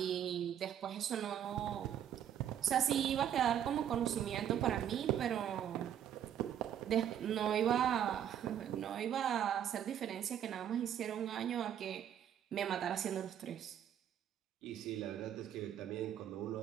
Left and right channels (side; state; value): left; quieter; 9.8 dB